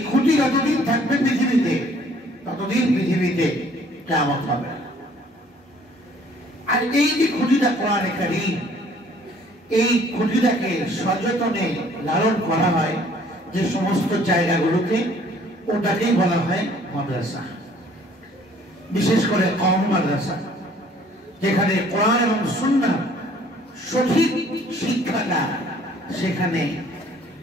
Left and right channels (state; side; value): normal; both; correlation 0.57